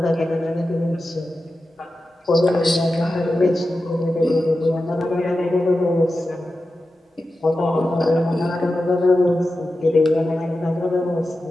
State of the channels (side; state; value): both; normal; correlation 0.92